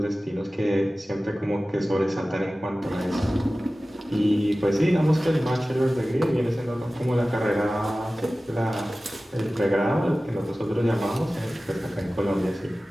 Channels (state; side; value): normal; both; correlation 0.96